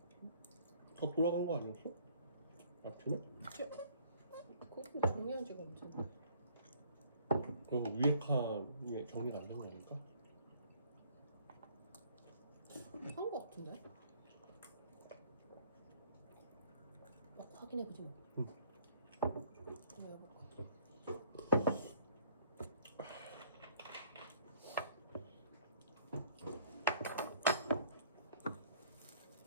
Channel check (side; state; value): both; inverted; correlation -0.59